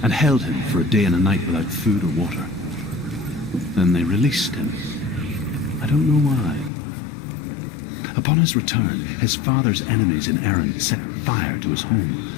and held him for a day and a night without food or water. Then they released him. I don't know why. Upon his return, his father's enemies in Erin set fire to his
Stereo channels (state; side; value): drops out; right; at 6.7 s